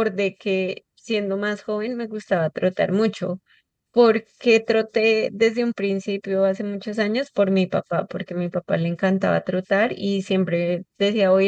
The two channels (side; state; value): both; identical; correlation 1.00